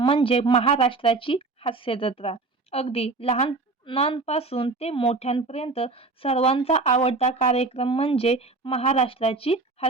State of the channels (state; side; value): quieter; left; 3.7 dB